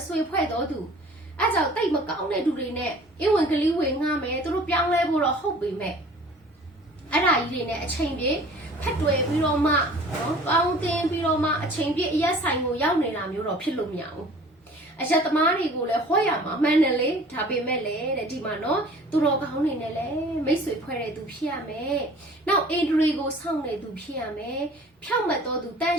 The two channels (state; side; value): normal; both; correlation 0.47